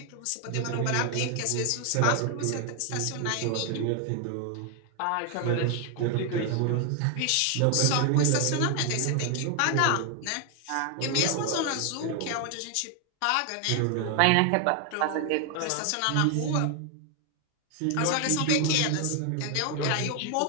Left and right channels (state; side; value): different; both; correlation 0.00